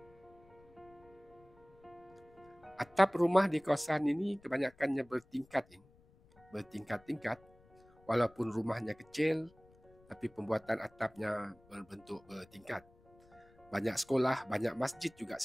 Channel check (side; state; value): left; noise; rumble, 28 dB below the sound